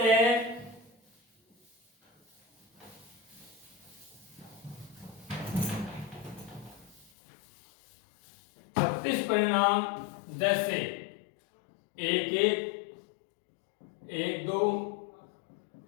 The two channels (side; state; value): right; drops out; at 7.1 s